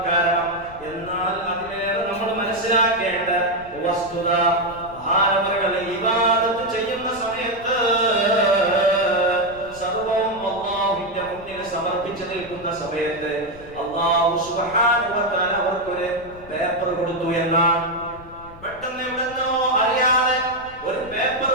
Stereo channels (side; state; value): left; noise; rumble, 20 dB below the sound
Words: കാരണം. എന്നാൽ അതിലേറെ നമ്മൾ മനസ്സിലാക്കേണ്ട വസ്തുത, മഹാനവറുകൾ ഇബാദത്ത് ചെയ്യുന്ന സമയത്ത് സർവവും അല്ലാഹുവിന്റെ മുന്നിൽ സമർപ്പിച്ചു നിൽക്കുന്ന സമയത്ത് അല്ലാഹു സുബ്ഹാനഹു വ തആല അവർക്കൊരു പേപ്പർ കൊടുത്തു എന്നാണ്. പെട്ടെന്ന് എവിടെന്നോ അറിയാതെ ഒരു പേപ്പർ